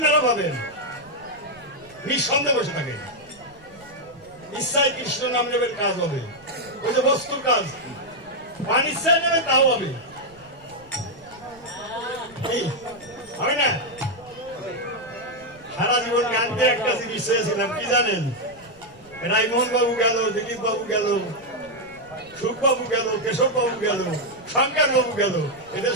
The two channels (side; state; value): right; noise; rumble, 26 dB below the sound